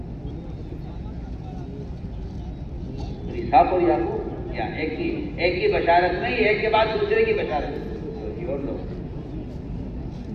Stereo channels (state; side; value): identical; both; correlation 1.00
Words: صاف ہو یا کیا ایک کی بشارت نہیں، ایک کے بعد دوسرے کی بشارت، اور لوگ